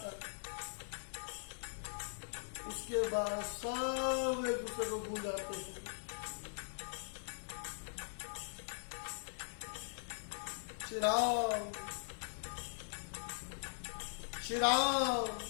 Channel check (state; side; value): silent; right; digital silence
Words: उसके बाद सब एक दूसरे को भूल जाते हैं। श्री राम श्री राम